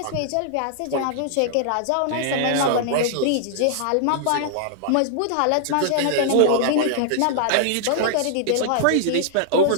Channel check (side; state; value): both; different; correlation -0.01